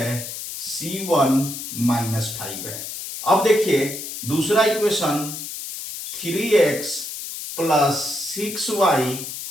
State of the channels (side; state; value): left; noise; hiss, 8 dB below the sound